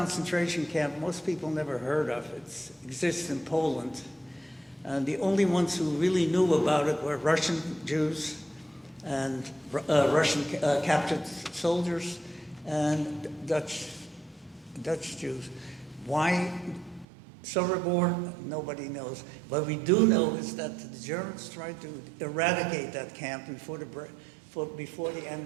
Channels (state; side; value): drops out; left; at 17.1 s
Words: camp most people never heard of. It exists in Poland. And the only ones who really knew about it were Russian Jews and Russian captured soldiers and Dutch Jews. Why Sobibor? Nobody knows. What we do know is that the Germans tried to eradicate that camp before the